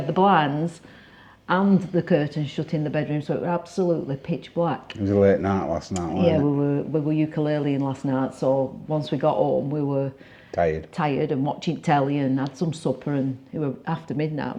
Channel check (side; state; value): both; identical; correlation 1.00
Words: the blinds and the curtains shut in the bedroom, so it was absolutely pitch black. It was a late night last night, wasn't Yeah, it? we were ukuleleing last night, so once we got home we were tired and watching telly and had some supper, and it was after midnight,